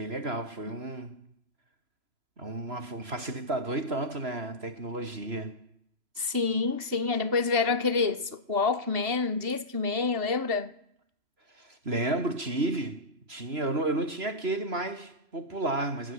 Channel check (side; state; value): left; late; 2.7 ms